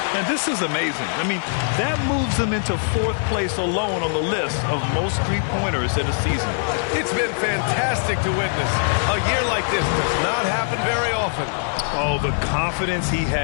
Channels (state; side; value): silent; right; digital silence